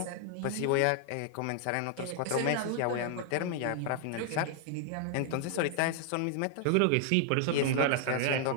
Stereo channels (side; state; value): both; different; correlation 0.00